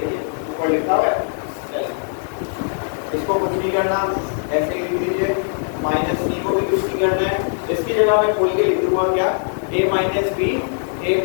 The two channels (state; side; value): silent; right; digital silence